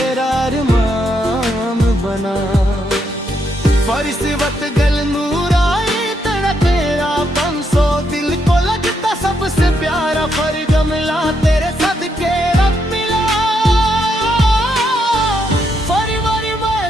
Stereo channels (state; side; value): normal; both; correlation 0.78